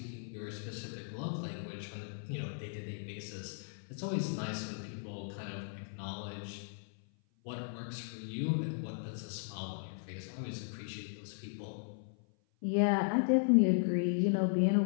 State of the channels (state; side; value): silent; right; 53 dB below the other